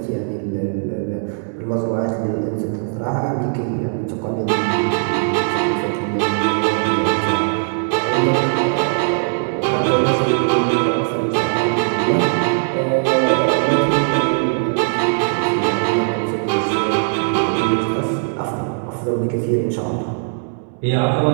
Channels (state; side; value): silent; left; 66 dB below the other